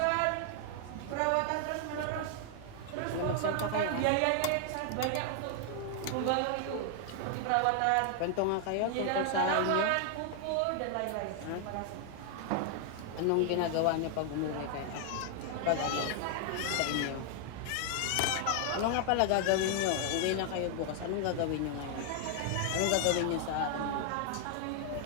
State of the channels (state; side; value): different; both; correlation 0.00